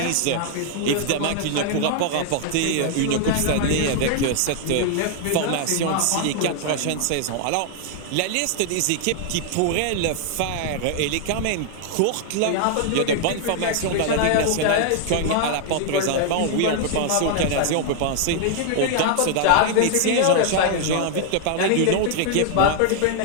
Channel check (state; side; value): different; both; correlation 0.00